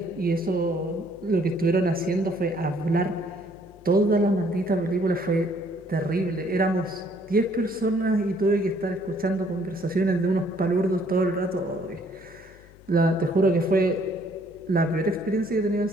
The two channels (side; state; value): left; noise; hum, 24 dB below the sound